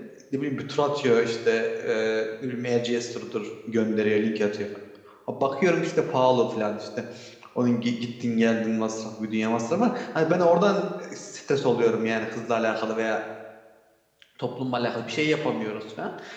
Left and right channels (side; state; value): both; identical; correlation 1.00